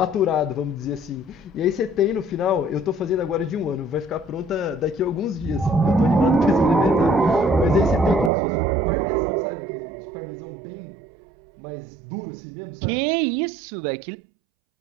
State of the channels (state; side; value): drops out; left; at 8.3 s